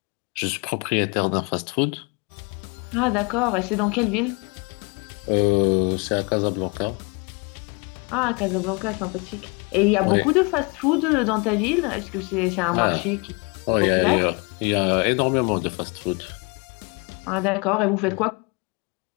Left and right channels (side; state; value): right; quieter; 30.1 dB